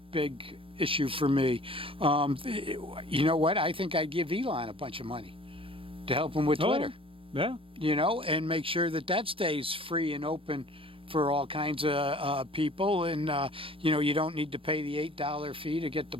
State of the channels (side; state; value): left; late; 0.26 ms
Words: big issue for me. You know what? I think I'd give Elon a bunch of money to help him with Twitter. Yeah. And make sure that stays free and open for all kinds of people. And, you don't need to pay the $8 fee to get the